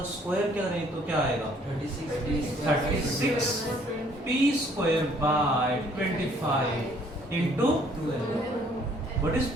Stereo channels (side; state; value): both; normal; correlation 0.61